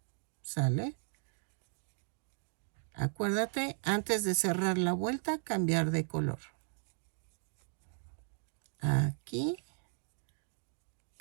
¿Sale? Acuérdate, antes de cerrar la vuelta, cambiar de color. Aquí,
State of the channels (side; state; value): left; silent; digital silence